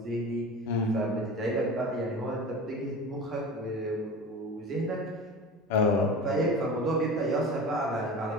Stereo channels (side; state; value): both; normal; correlation 0.33